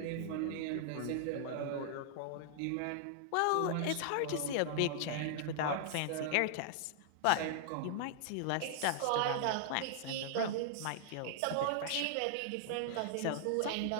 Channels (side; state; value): both; different; correlation -0.01